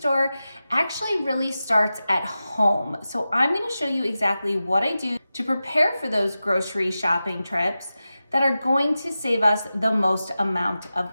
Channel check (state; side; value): inverted; both; correlation -0.93